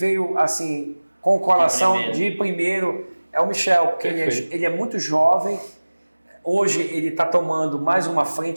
assim com o coração de primeiro é o Michel, porque ele é muito jovem. Hoje ele está tomando mais uma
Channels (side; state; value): both; inverted; correlation -1.00